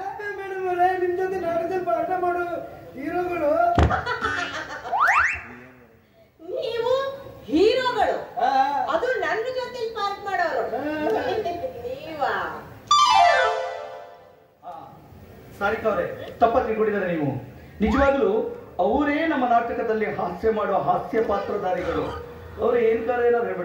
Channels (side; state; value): both; identical; correlation 1.00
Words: ನಿಮ್ ಜೊತೆ ನಾಟಕದಲ್ಲಿ ಪಾಠ ಮಾಡೋ ಹೀರೋಗಳು. ನೀವು ಹೀರೋಗಳು, ಅದು ನನ್ನ ಜೊತೆ ಪಾಠ ಮಾಡೋರು ನೀವಾ? ಸಾರಿಕಾ ಅವರೇ, ತಪ್ಪ ತಿಳ್ಕೊಂಡಿದ್ದಾರೆ ನೀವು. ನಿಜವಾಗ್ಲೂ ಅವರೇ ನಮ್ಮ ನಾಟಕದಲ್ಲಿ ಹಾಸ್ಯ ಮಾಡುವ ಹಾಸ್ಯ ಪಾತ್ರಧಾರಿಗಳು. ಅವ್ರು ಏನಾದ್ರು